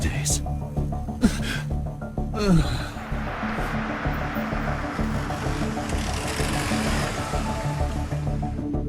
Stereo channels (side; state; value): both; identical; correlation 1.00